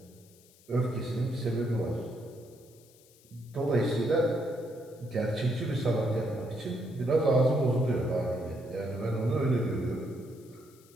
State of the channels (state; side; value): noise; left; hiss, 27 dB below the sound